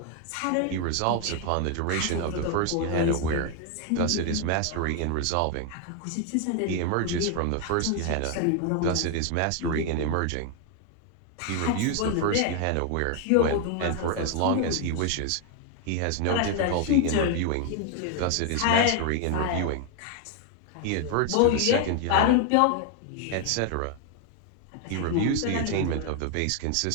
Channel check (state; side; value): different; both; correlation 0.00